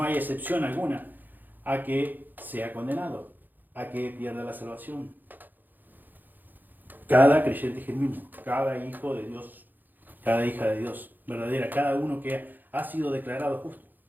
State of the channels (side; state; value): left; late; 0.087 ms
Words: hay excepción alguna a que sea condenado, a que pierda la salvación. Cada creyente genuino, cada hijo de Dios, cada hija de Dios verdadera, cada uno que ha sido declarado justo,